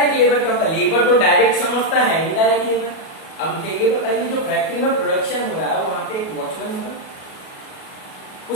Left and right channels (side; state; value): right; late; 37 ms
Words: लेबर क्या होता है, लेबर तो डायरेक्ट समझता है, इनडायरेक्ट लेबर। अब मुझे ये बताइए, जो फैक्ट्री में प्रोडक्शन हो रहा है वहां पे एक वॉचमैन होगा,